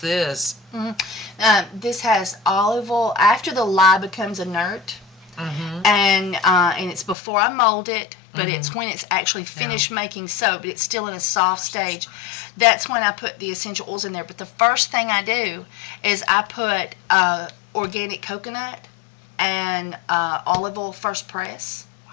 this, this has olive oil after the lye becomes inert, and it's before I mold it, but it's when it's actually finished making soap, but it's still in a soft stage. That's when I put the essential oils in there. But the first thing I do is I put organic coconut and olive oil first press.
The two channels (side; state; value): right; drops out; at 7.2 s